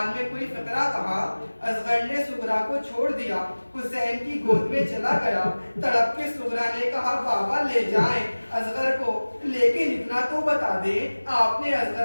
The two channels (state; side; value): inverted; both; correlation -1.00